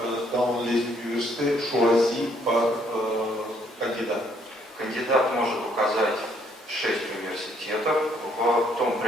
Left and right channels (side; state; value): both; normal; correlation 0.67